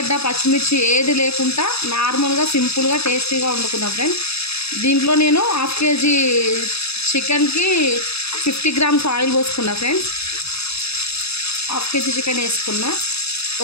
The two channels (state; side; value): late; right; 0.79 ms